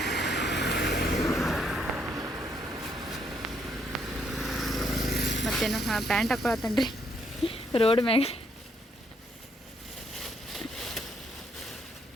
ಮತ್ತೇನು ಪ್ಯಾಂಟ್ ಹಾಕೊಳತ್ತನ್ರಿ ರೋಡ್ ಮ್ಯಾಗ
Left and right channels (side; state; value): both; normal; correlation 0.72